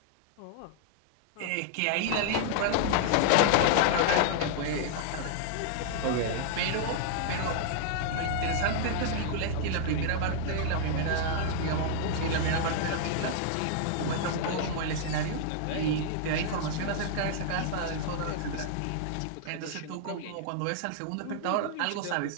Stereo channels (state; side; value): different; both; correlation -0.01